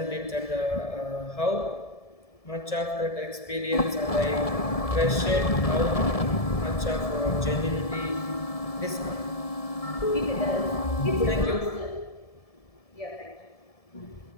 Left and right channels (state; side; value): late; right; 1.7 ms